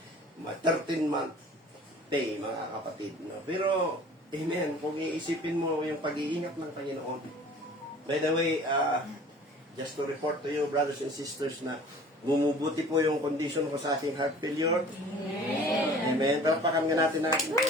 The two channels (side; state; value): both; normal; correlation 0.46